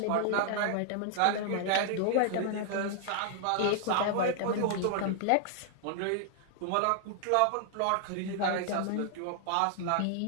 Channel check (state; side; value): different; both; correlation 0.00